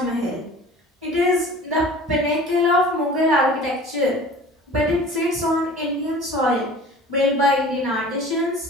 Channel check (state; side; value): normal; both; correlation 0.43